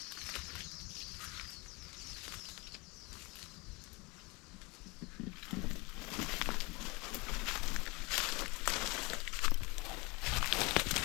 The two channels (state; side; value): quieter; right; 26.5 dB